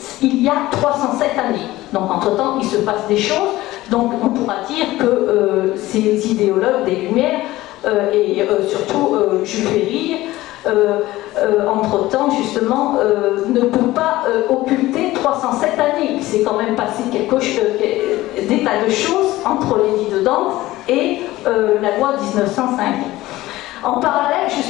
il y a 307 années. Donc entre-temps, il se passe des choses. Donc on pourra dire que ces idéologues des Lumières et surtout Jules Ferry, entre-temps justement, ne peut pas occulter 307 années. Il s'est quand même passé des tas de choses entre l'édit de Nantes et la loi 1905. En parallèle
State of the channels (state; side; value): quieter; right; 17.2 dB